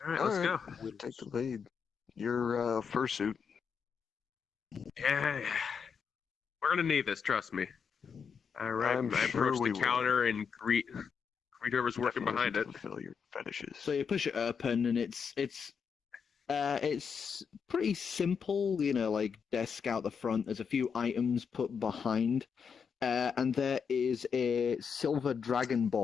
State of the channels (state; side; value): quieter; right; 6.4 dB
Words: right, let's All go. We'll take the lead. Your fursuit. Yeah. We're gonna need this, trust me. All right, I'm I sure approach we the will. counter and greet whoever's working Definitely behind it. fulfill your fetishes. So you push it open, and it's pretty simple, like desk out the front. There's a few items put behind, and there is a silver